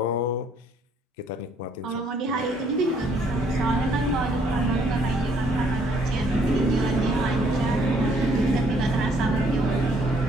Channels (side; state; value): both; normal; correlation 0.65